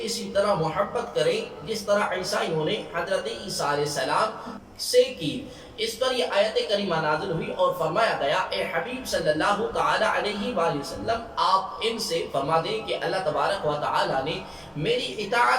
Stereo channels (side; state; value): both; identical; correlation 1.00